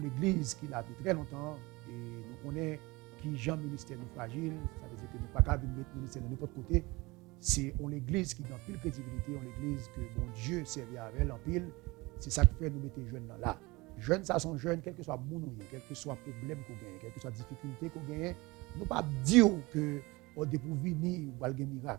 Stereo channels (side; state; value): left; quieter; 23.0 dB